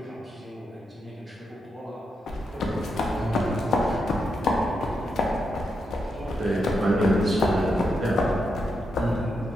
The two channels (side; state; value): both; normal; correlation 0.83